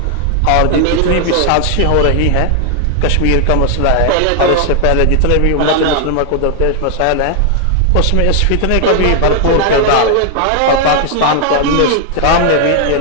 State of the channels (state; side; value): different; both; correlation 0.00